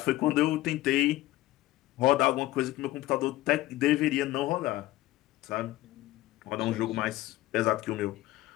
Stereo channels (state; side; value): quieter; right; 16.6 dB